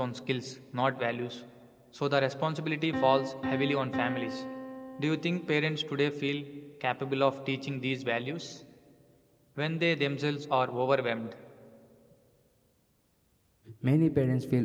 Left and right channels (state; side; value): identical; both; correlation 1.00